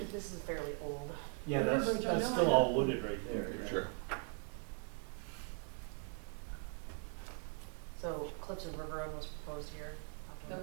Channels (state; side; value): quieter; left; 39.5 dB